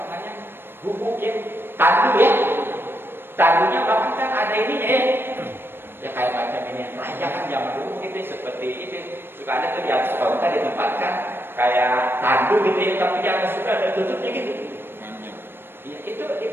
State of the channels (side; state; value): left; late; 0.10 ms